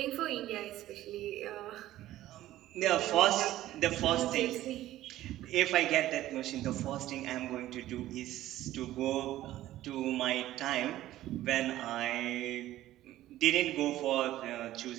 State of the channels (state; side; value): quieter; left; 14.5 dB